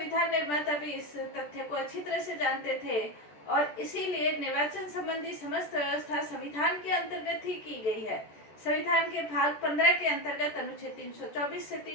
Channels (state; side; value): late; right; 14 ms